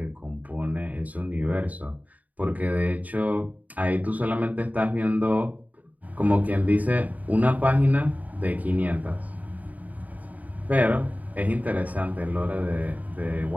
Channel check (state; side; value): late; left; 0.074 ms